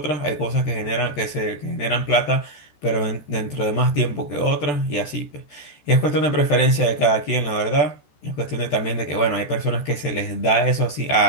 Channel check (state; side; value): late; right; 14 ms